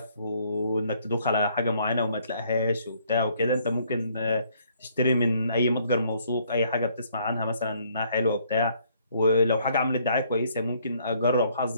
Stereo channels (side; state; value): both; inverted; correlation -0.66